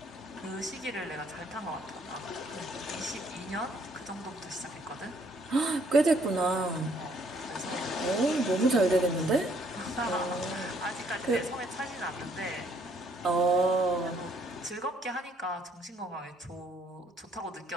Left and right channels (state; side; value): normal; both; correlation 0.66